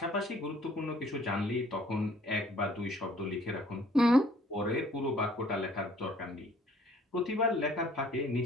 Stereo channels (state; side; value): normal; both; correlation 0.58